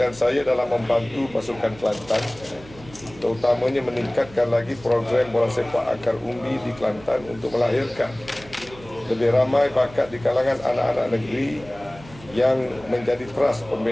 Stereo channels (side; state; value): right; noise; hum, 20 dB below the sound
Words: saya dalam membantu pasukan Kelantan, terutamanya meningkatkan lagi program bola sepak akar umbi di Kelantan untuk melahirkan lebih ramai bakat di kalangan anak-anak negeri yang menjadi teras